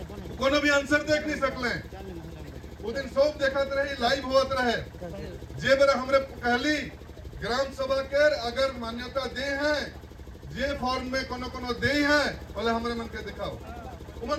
कोनो भी आंसर देख नहीं सकले। वो दिन सब देखत रही लाइव होत रहे जे बेरा हमरे कहली ग्राम सभा के अगर मान्यता दे हैं जे फॉर्म में कोनो कोनो दे हैं बोले हमरे मन के दिखाओ,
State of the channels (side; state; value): both; identical; correlation 1.00